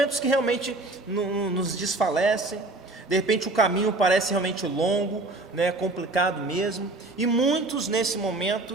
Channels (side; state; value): left; quieter; 3.0 dB